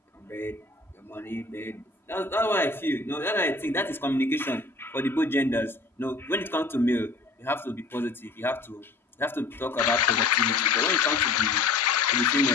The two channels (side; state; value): right; quieter; 3.6 dB